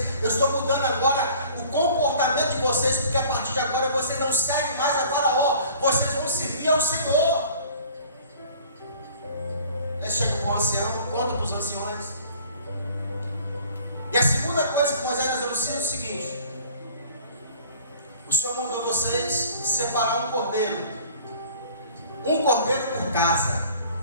Eu estou mudando agora o comportamento de vocês, porque a partir de agora vocês não seguem mais a faraó, vocês vão servir ao Senhor. Aí chega para o ancião, conta para os anciões. E a segunda coisa que Moisés nos anuncia é o seguinte: o Senhor mandou vocês separar um cordeiro por casa.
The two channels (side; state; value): both; inverted; correlation -0.49